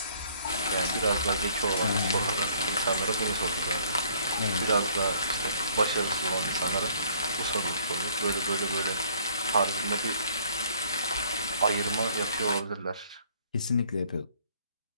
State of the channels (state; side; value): inverted; both; correlation -0.60